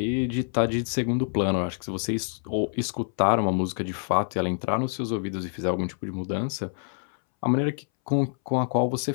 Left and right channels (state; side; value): silent; right; 61 dB below the other